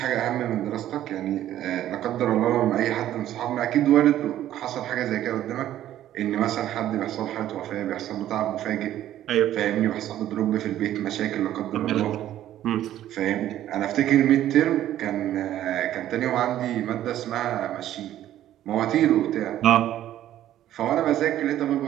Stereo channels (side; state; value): left; quieter; 12.4 dB